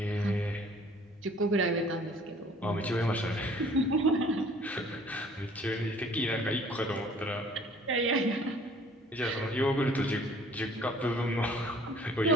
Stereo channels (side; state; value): both; normal; correlation 0.54